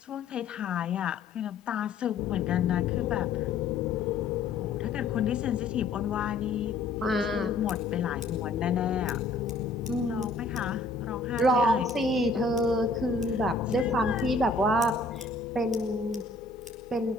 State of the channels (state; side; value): quieter; right; 3.6 dB